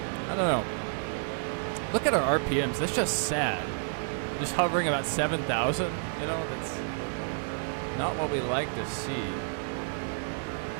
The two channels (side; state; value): left; silent; digital silence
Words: I don't know. Look at our RPMs. That's just sad. Just hovering about 7,000. You know, that's not what we like to see.